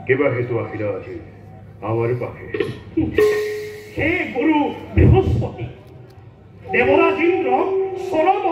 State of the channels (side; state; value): both; identical; correlation 1.00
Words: কেবা হেতু আহিলা আজি আমার পাখে? হে গুরু বৃহস্পতি, দেবরাজ ইন্দ্র চরম